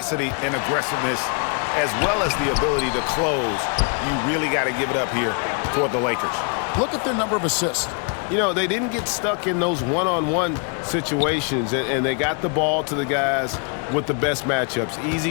and aggressiveness as well as the ability to close. You really got to give it up here for the Lakers. Look at their number of assists. You know, they didn't get stuck in those one-on-one situations, and they got the ball to the guys with the best matchups.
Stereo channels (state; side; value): quieter; right; 39.1 dB